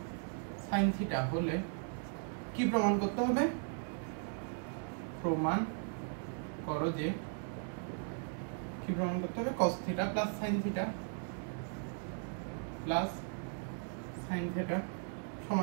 sin থিটা হলে কি প্রমাণ করতে হবে? প্রমাণ করো যে কি প্রমাণ করতে হবে? cos theta plus sin theta plus sin theta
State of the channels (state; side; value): silent; left; 53 dB below the other